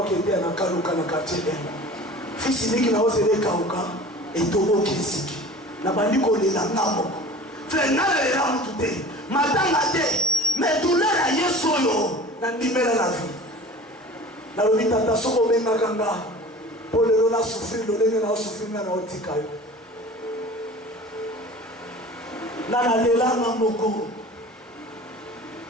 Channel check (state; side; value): normal; both; correlation 0.41